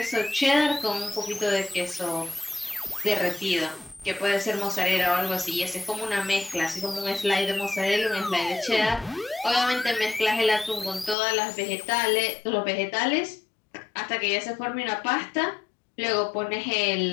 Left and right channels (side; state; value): right; drops out; at 11.2 s